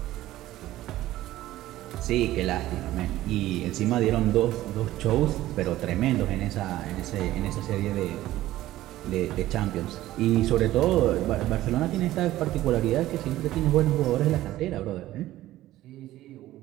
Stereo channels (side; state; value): left; quieter; 15.1 dB